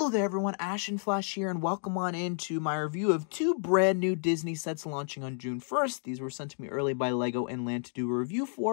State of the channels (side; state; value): right; silent; 57 dB below the other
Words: there everyone, Ashen Flash here, and welcome on into my review of two brand new Disney sets launching on June 1st. These were sent to me early by LEGO and Land to do a review